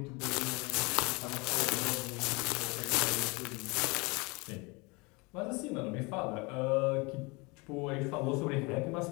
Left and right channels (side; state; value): right; quieter; 27.1 dB